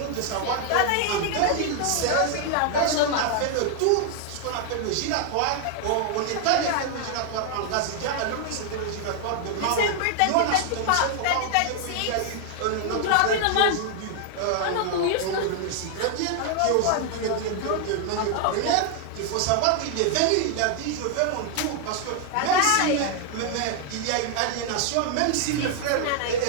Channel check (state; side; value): different; both; correlation 0.00